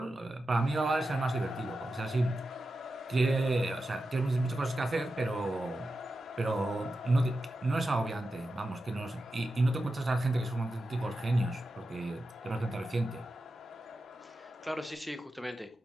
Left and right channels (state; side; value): normal; both; correlation 0.90